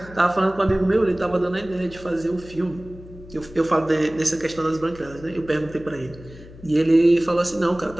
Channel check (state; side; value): noise; left; hum, 18 dB below the sound